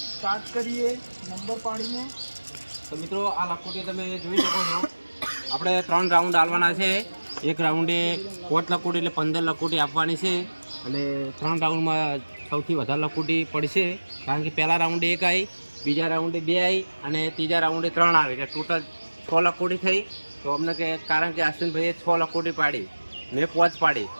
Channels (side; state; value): both; inverted; correlation -1.00